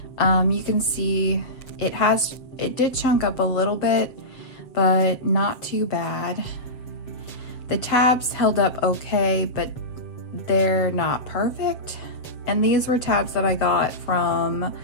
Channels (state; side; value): late; right; 7.8 ms